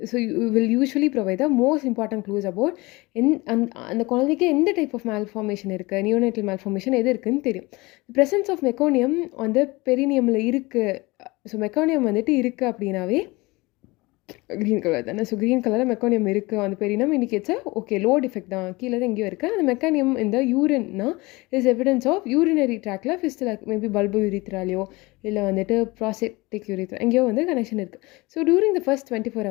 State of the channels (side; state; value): right; quieter; 23.1 dB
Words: So you will usually provide the most important clues about அந்த குழந்தைக்கு எந்த டைப் ஆஃப் மால்ஃபார்மேஷன் இருக்குது, நியோனேட்டல் மால்ஃபார்மேஷன் எது இருக்குதுன்னு தெரியும். ப்ரெசன்ஸ் ஆஃப் மெக்கோனியம் வந்து பெரினியமில் இருக்குது. ஸோ மெக்கோனியம் வந்துட்டு இருக்குது அப்படின்னாவே க்ரீன் கலர் தானே. ஸோ க்ரீன் கலரில் மெக்கானியம் இருக்குது அந்த பெரினம் இண்டிகேட்ஸ் ஓகே லோ டிஃபெக்ட் தான், கீழே தான் எங்கேயோ இருக்குது. அந்த மெக்கானியம் இந்த யூரின்னா இஸ் எவிடன்ஸ் ஆஃப் யூரினரி ட்ராக்ல ஃபிஸ்டில் மேபி பல்பு யூரித்ராலையோ இல்லை வந்துட்டு ப்ராஸ்டேட்டிக் யூரித்ரா எங்கேயோ வந்து கனெக்ஷன் இருக்குது. So during the first 24